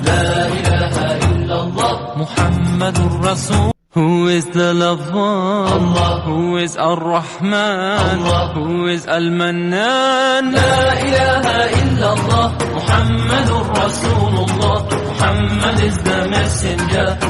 La ilaha illallah, Muhammadur Rasul. Who is the lover? Allah. Who is Ar-Rahman? Allah. Who is Al-Mannan? La ilaha illallah, Muhammadur Rasulullah. Muhammad is the messenger,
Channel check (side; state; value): both; identical; correlation 1.00